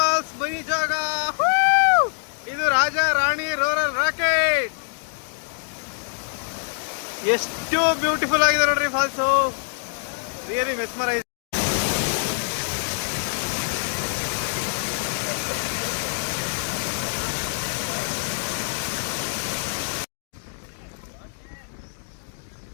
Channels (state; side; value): silent; right; digital silence